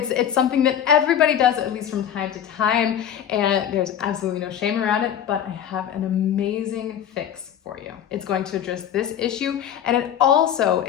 something that everybody does, at least from time to time, and there's absolutely no shame around it, but I have an amazing fix for you. It's going to address this issue, and it also,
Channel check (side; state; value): right; quieter; 9.5 dB